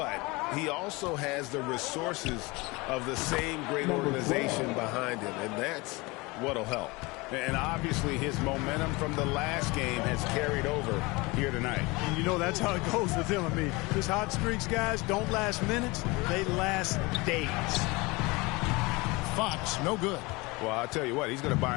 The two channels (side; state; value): right; quieter; 24.4 dB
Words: he also has the resources of the same great organization behind him, and that's what'll help. And obviously his momentum from the last game has carried over here tonight. And you know that's how it goes with him. I mean, his hot streaks, guys, don't last minutes. They last days. Fox, no good. Well, I'll tell you what, he's going to buy